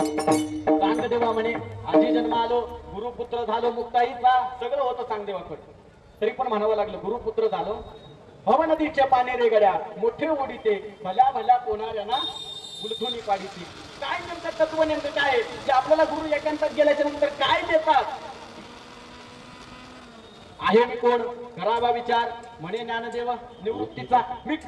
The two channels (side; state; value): both; identical; correlation 1.00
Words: चांगदेवा म्हणे आजी जन्म आलो, गुरुपुत्र झालो मुक्ताईचा. सगळं होतं चांगदेवाकडे. तरी पण म्हणावं लागलं गुरुपुत्र झालो. भव नदीच्या पाने रे गड्या मोठे ओढीते, भल्या भल्या कोणाऱ्यांना गुलथुनी पाडीची. काय नेमकं तत्व नेमकं काय जे आपल्याला गुरु एकांतात गेल्याच्या नंतर काय देतात? आहे मी कोण? करावा विचार. म्हणे ज्ञानदेवा निवृत्तीचा मी